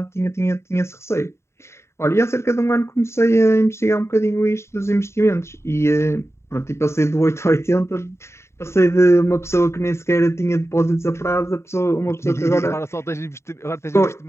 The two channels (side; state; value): right; late; 0.13 ms